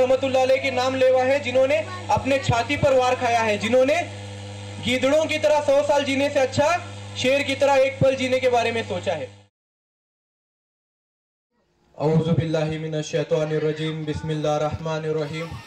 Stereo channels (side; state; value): both; identical; correlation 1.00